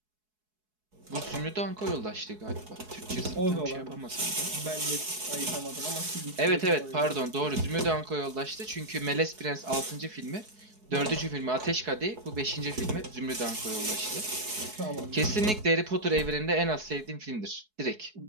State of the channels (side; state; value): left; late; 4.7 ms